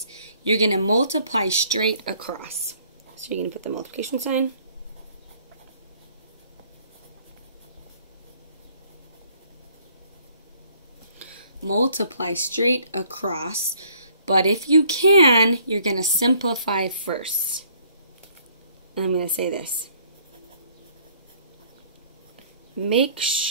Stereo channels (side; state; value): both; inverted; correlation -0.61